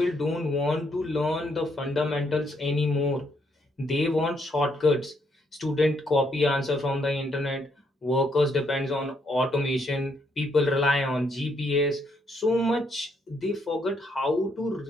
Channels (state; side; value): normal; both; correlation 0.74